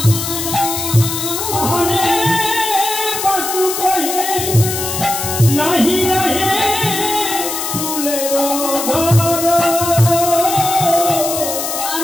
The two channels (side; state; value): left; noise; hiss, 4 dB below the sound